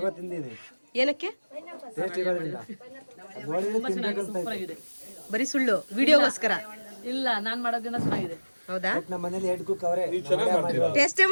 ಏನಕ್ಕೆ? ಬರೀ ಸುಳ್ಳು ವಿಡಿಯೋಗೋಸ್ಕರ. ಇಲ್ಲ, ನಾನ್ ಮಾಡೋದ್ರಿಂದ ಚೆನ್ನಾಗಿದೆ. ಹೌದಾ? ಟೇಸ್ಟೇ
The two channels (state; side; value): inverted; both; correlation -1.00